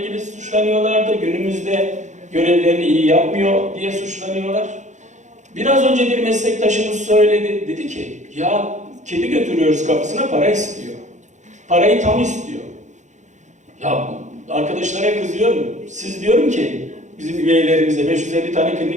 suçlanıyorlardı. Günümüzde görevlerini iyi yapmıyor diye suçlanıyorlar. Biraz önce bir meslektaşımız söyledi. Dedi ki ya kedi götürüyoruz kapısına, para istiyor. Parayı tam istiyor. Ya arkadaşlara kızıyorum. Siz diyorum ki bizim üyelerimize 550 tane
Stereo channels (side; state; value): left; late; 0.35 ms